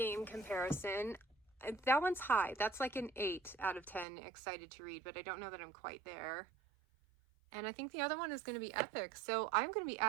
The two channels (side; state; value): left; drops out; at 4.0 s